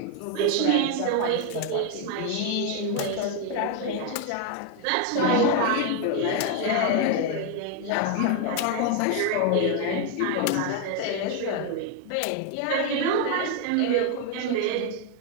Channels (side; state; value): both; different; correlation 0.01